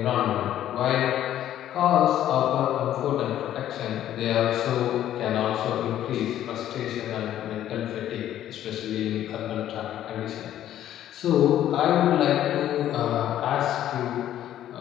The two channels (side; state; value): right; quieter; 11.9 dB